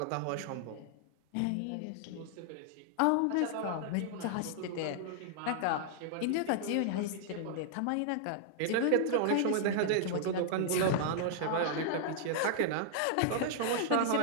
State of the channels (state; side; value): different; both; correlation -0.01